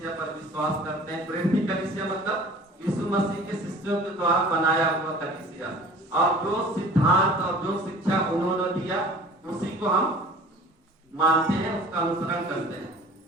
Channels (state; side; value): normal; both; correlation 0.45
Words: पर विश्वास करते हैं। प्रेरित कलीसिया मतलब यीशु मसीह के शिष्यों के द्वारा बनाया हुआ कलीसिया, और जो सिद्धांत और जो शिक्षा उन्होंने दिया उसी को हम मानते हैं, उसका अनुसरण करते हैं।